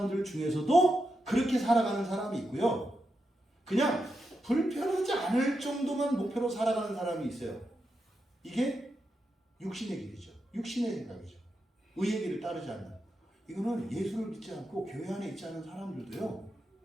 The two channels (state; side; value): normal; both; correlation 0.86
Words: 중에서도 그렇게 살아가는 사람이 있고요. 그냥 불편하지 않을 정도만 목표로 살아가는 사람이 있어요. 이게 육신의 길이죠. 육신의 생각이죠. 의의 길을 따르지 않는. 이거는 예수를 믿지 않고 교회 안에 있지 않은 사람들도요.